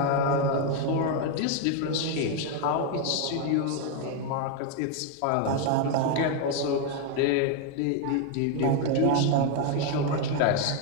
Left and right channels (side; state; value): both; different; correlation 0.01